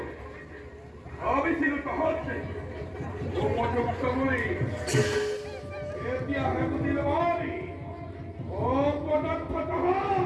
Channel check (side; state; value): both; identical; correlation 1.00